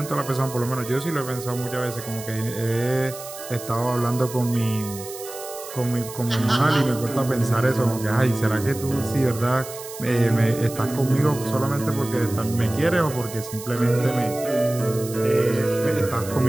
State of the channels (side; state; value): right; noise; hiss, 13 dB below the sound